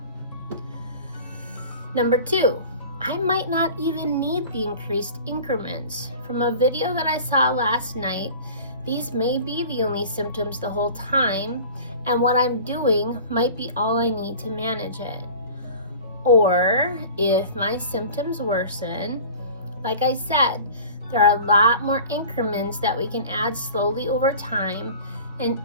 Number 2, I might not even need the increased increments. From a video that I saw last night, these may be the only symptoms the whole time, and what I'm doing might be all I need to manage it. Or if my symptoms worsen, like I said, there are a lot more increments that we can add slowly over time, and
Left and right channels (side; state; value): both; inverted; correlation -0.41